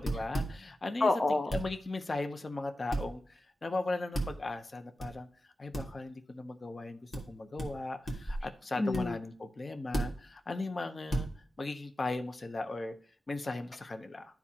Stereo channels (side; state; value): both; normal; correlation 0.93